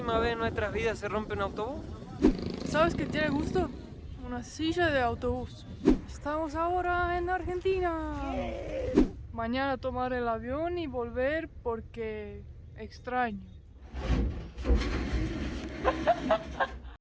vez en nuestras vidas se rompe un autobús. ¿Sabes qué tiene gusto? Una silla de autobús. Estamos ahora en Argentina. Mañana tomar el avión y volver porque extraño.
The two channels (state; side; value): identical; both; correlation 1.00